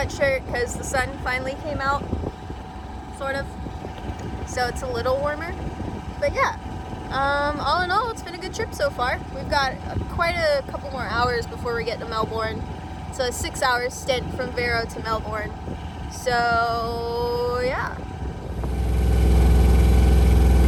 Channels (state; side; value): identical; both; correlation 1.00